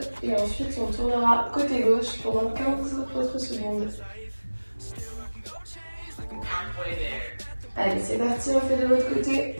et ensuite on tournera côté gauche pendant 15 autres secondes. Allez, c'est parti, on fait de l'autre côté.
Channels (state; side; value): inverted; both; correlation -1.00